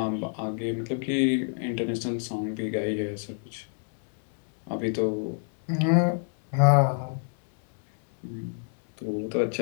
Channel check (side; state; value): right; silent; 60 dB below the other